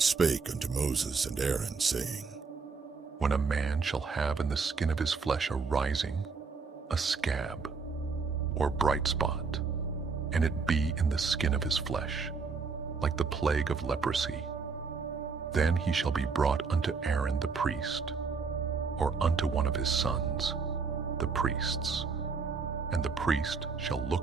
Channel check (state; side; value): quieter; left; 4.9 dB